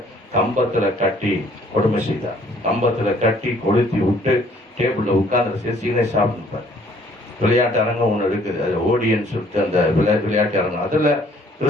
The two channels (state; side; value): normal; both; correlation 0.60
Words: கம்பத்துல கட்டி கொடுமை செய்தார். கம்பத்துல கட்டி கொளுத்தி விட்டு டேபிள்ல உட்கார்ந்து சீனை சாப்பிட்டுப்பார். விளையாட்டு அரங்கம் ஒன்று இருக்குது, அது ஓடியன்னு சொல்லிட்டு அந்த விளையாட்டு அரங்கம். அதுல